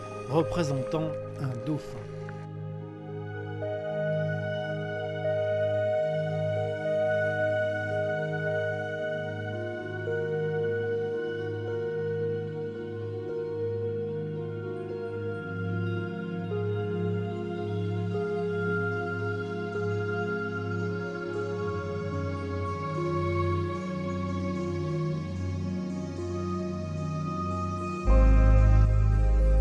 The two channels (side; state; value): both; identical; correlation 1.00